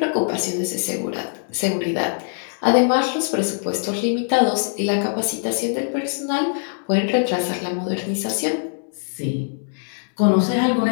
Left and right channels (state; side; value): silent; right; digital silence